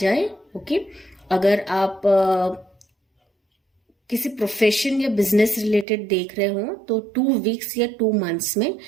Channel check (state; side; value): drops out; left; at 5.9 s